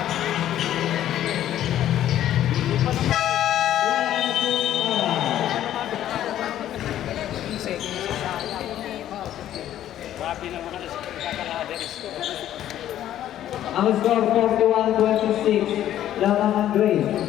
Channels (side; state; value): right; quieter; 12.0 dB